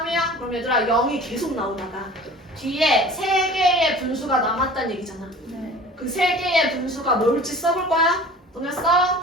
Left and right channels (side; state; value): both; normal; correlation 0.43